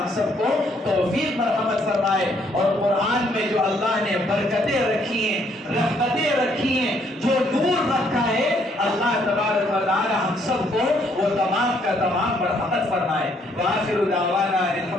سب کو توفیق مرحمت فرمائے۔ اور قرآن میں جو اللہ نے برکتیں رکھی ہیں، رحمتیں رکھی ہیں، جو نور رکھا ہے، اللہ تبارک و تعالی ہم سب کو وہ تمام کا تمام مرحمت فرمائے۔ وآخر دعوانا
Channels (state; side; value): normal; both; correlation 0.68